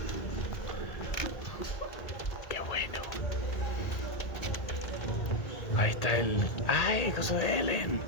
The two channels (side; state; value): right; late; 1.8 ms